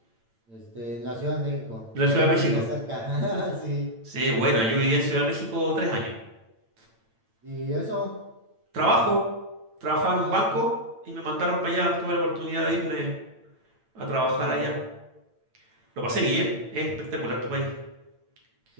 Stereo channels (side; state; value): left; late; 8.9 ms